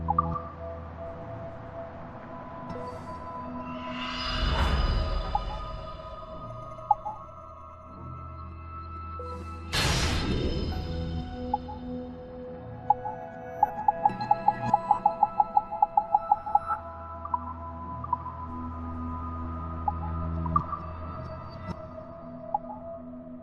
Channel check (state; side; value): identical; both; correlation 1.00